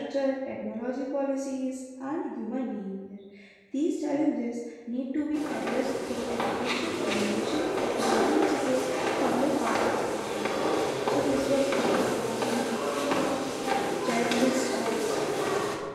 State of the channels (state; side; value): identical; both; correlation 1.00